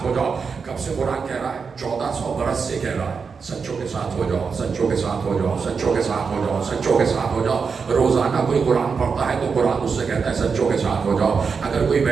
ہو جاؤ. کب سے قرآن کہہ رہا ہے؟ 1400 برس سے کہہ رہا ہے سچوں کے ساتھ ہو جاؤ, سچوں کے ساتھ ہو جاؤ, سچوں کے ساتھ ہو جاؤ, سچوں کے ساتھ ہو جاؤ. روزانہ کوئی قرآن پڑھتا ہے تو قرآن اس سے کہتا ہے سچوں کے ساتھ ہو جاؤ. اگر کوئی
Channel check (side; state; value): left; quieter; 5.5 dB